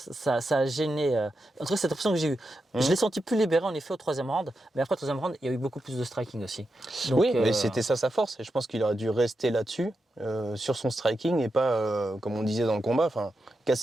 a gêné. En tout cas, c'est l'impression que j'ai eue. Je l'ai senti plus libéré en effet au troisième round, mais après le troisième round, il y a eu beaucoup plus de striking aussi. Donc, oui, mais c'était ça sa force, et je pense qu'il aurait dû rester là-dessus, sur son striking, et pas, comme on disait dans le combat,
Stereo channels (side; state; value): both; normal; correlation 0.87